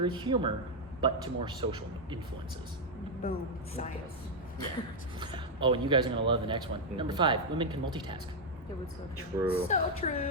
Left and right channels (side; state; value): both; normal; correlation 0.00